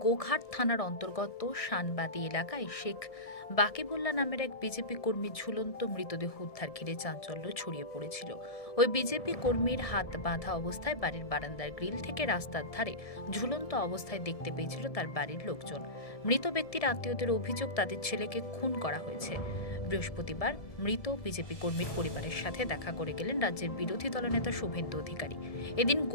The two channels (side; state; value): right; late; 1.7 ms